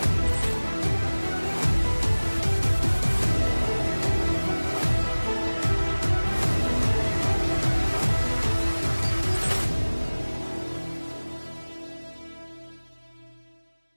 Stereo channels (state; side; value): inverted; both; correlation -1.00